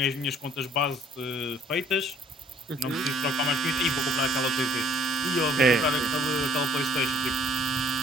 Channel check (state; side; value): normal; both; correlation 0.59